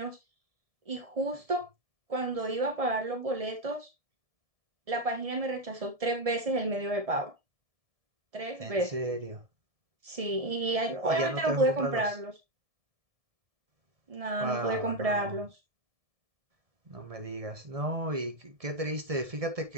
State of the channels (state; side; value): late; left; 1.7 ms